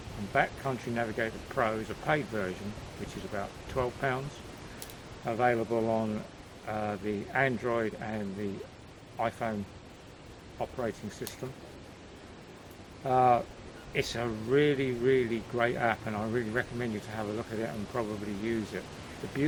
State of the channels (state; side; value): identical; both; correlation 1.00